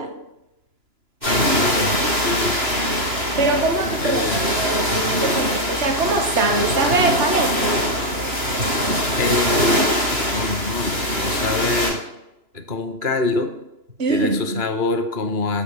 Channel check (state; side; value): late; left; 2.9 ms